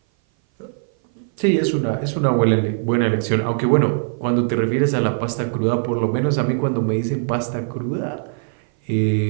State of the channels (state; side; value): silent; left; 57 dB below the other